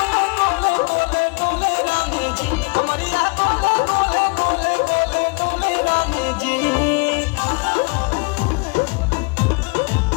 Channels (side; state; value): right; quieter; 31.7 dB